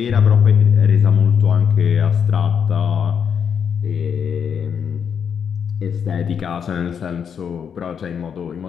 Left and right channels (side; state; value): right; quieter; 7.4 dB